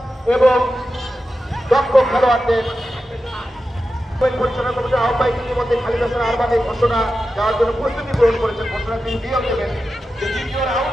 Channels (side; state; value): both; normal; correlation 0.91